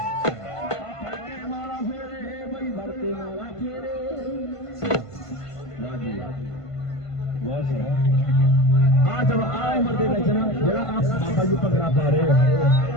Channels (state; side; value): late; right; 1.5 ms